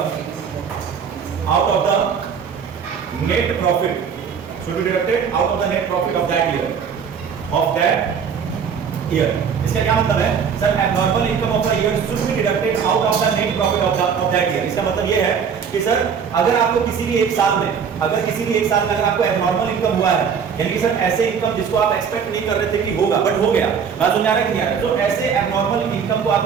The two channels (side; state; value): left; quieter; 6.8 dB